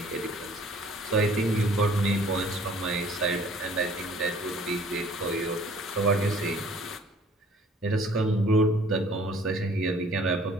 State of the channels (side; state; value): both; normal; correlation 0.54